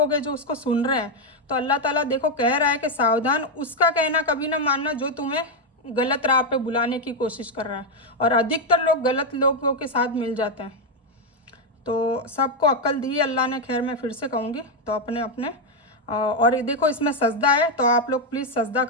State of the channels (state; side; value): normal; both; correlation 0.04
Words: हैं जो उसको सुन रहे हैं, तो अल्लाह ताला देखो कह रहा है कि सावधान उसका कहना कभी ना मानना जो तुम्हें गलत राह पे बुलाने की कोशिश कर रहा है। और अधिकतर लोग गलत लोगों के साथ मिल जाते हैं। तो सबको अक्ल दी अल्लाह ने, खैर मैं फिर से कहूँगी, तो अपने अपने और ये देखो इसमें सजदा है, तो आप लोग प्लीज़ सजदा